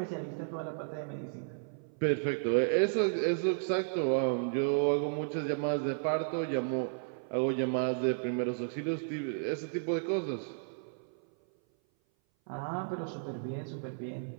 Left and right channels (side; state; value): left; silent; 56 dB below the other